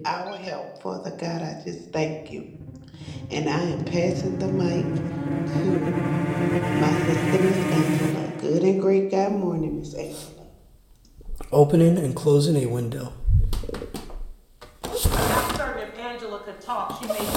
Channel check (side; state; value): both; identical; correlation 1.00